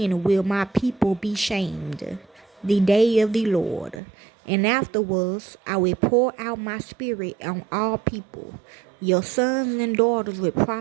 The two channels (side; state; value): left; drops out; at 4.0 s